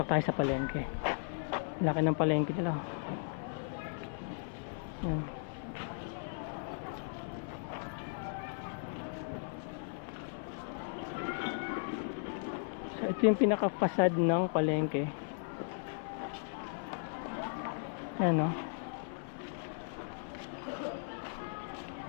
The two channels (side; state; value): right; silent; 53 dB below the other